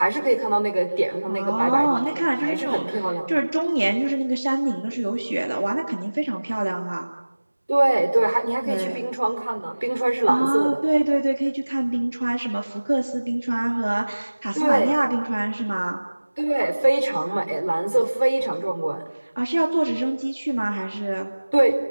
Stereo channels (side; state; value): both; inverted; correlation -1.00